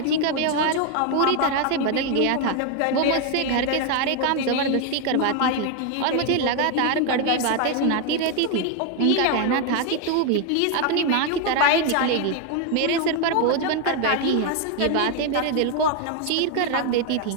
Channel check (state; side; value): different; both; correlation 0.01